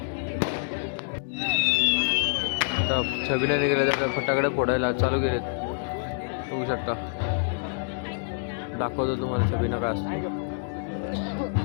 आता छबिना निघाल्या तर फटाकडे फोडायला चालू केलेत बघू शकता दाखवतो तुम्हाला छबिना काय असतो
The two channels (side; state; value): right; silent; digital silence